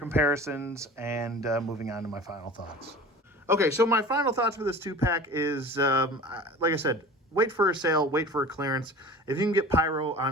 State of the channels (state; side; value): normal; both; correlation 0.39